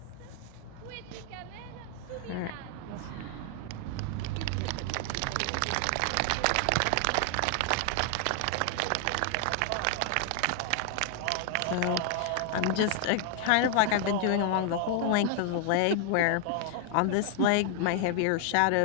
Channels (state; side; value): different; both; correlation 0.00